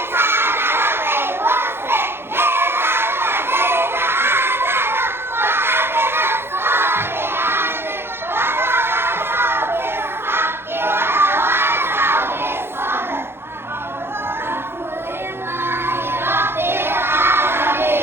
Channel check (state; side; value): late; left; 0.11 ms